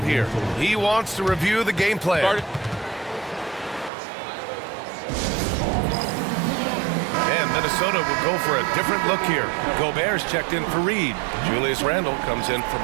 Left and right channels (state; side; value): drops out; left; at 3.9 s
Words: here. He wants to review the game plan. Minnesota will go for a different look here. Gobert's checked in for Reed. Julius Randle comes in for